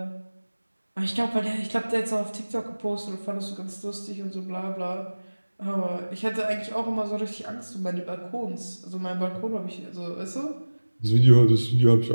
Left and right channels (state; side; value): inverted; both; correlation -1.00